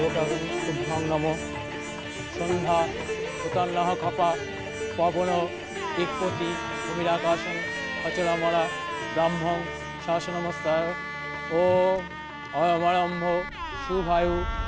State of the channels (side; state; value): both; identical; correlation 1.00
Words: শুভং নমঃ। সন্ধ্যা উতান্নঃ খপা পবন দিকপতি ভূমিরাকাশং অচলামলা ব্রাহ্মং শাসনমস্তায়। ও অয়মারম্ভ শুভায়ু